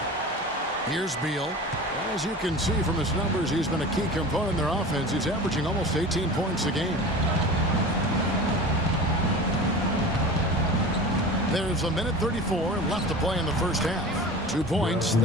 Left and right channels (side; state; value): both; normal; correlation 0.34